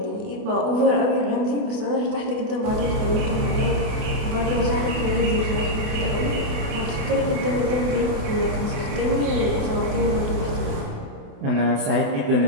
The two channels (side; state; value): left; late; 28 ms